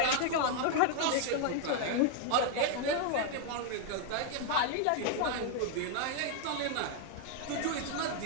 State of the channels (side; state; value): both; different; correlation 0.00